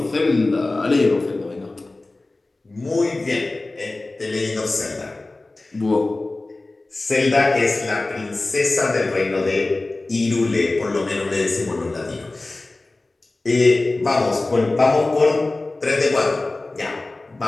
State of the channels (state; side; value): quieter; right; 3.1 dB